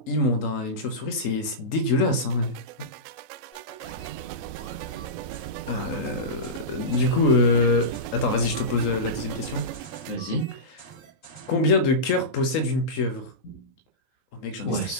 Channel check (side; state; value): right; late; 3.8 ms